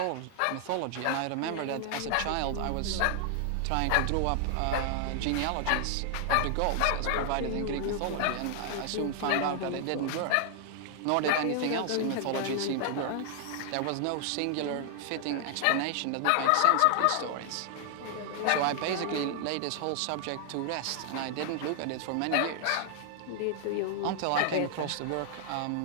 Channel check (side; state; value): both; different; correlation 0.00